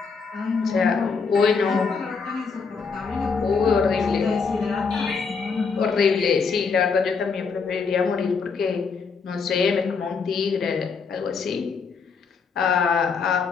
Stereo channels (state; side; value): quieter; right; 5.2 dB